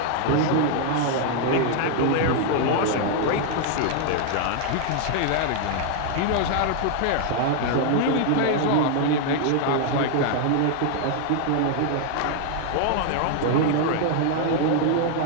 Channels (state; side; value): different; both; correlation 0.00